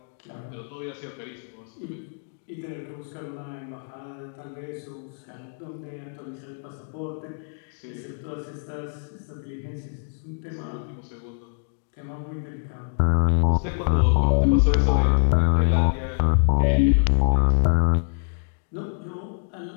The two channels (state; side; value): silent; right; digital silence